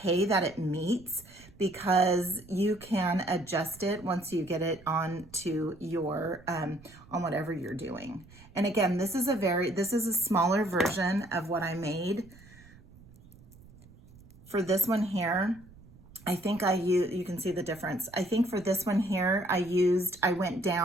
that it meets because you can adjust it once you get it onto your, on whatever you're doing. And again, this is a smaller version of what I made. For this one here, I think you can see the difference. I think for this one here, I went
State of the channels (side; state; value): right; noise; rumble, 23 dB below the sound